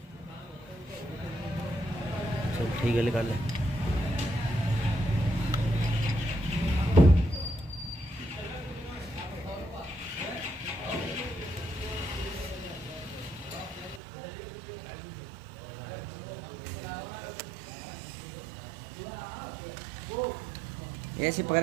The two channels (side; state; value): left; drops out; at 14.0 s